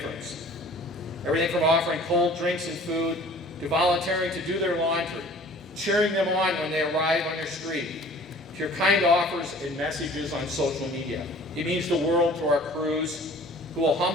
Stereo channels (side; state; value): both; normal; correlation 0.48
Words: Everything from offering cold drinks and food to volunteering to do their laundry, cheering them on when they arrive on your street, to your kind offers and messages on social media. It means the world to our crews, who will